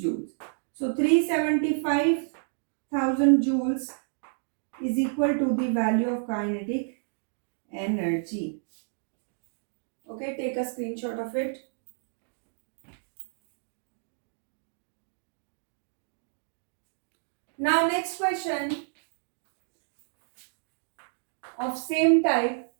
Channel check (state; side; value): silent; left; digital silence